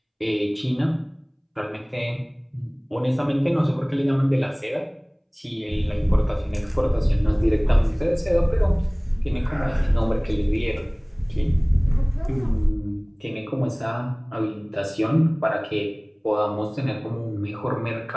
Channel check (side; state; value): both; identical; correlation 1.00